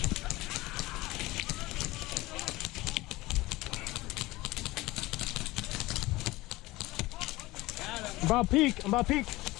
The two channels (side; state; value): right; quieter; 19.7 dB